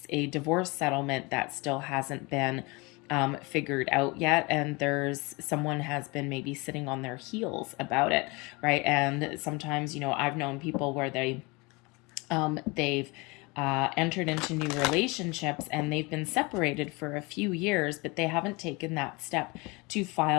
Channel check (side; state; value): right; quieter; 26.4 dB